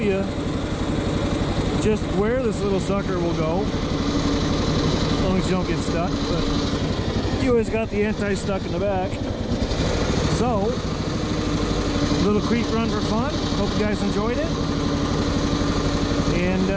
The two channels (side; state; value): both; identical; correlation 1.00